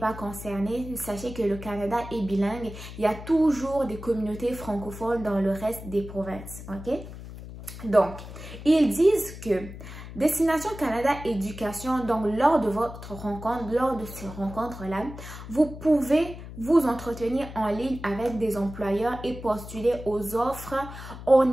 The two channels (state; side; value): noise; left; hum, 12 dB below the sound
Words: concerné, sachez que le Canada est bilingue. Il y a toujours des communautés francophones dans le reste des provinces. Ok? Donc, ils disent que Destination Canada Éducation, donc lors de votre rencontre, lors de ces rencontres-là, vous pouvez vous entretenir en ligne avec des employeurs et postuler aux offres en